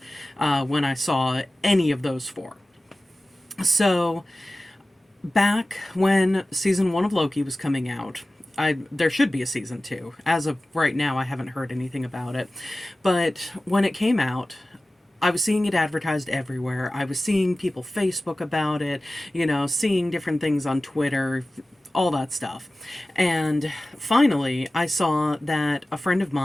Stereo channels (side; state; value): both; normal; correlation 0.96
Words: when I saw any of those 4. So back when season 1 of Loki was coming out, there should be a season 2. As of right now, I haven't heard anything about it. But when it came out, I was seeing it advertised everywhere. I was seeing people Facebook about it, seeing different things on Twitter, all that stuff. And finally, I saw that a friend of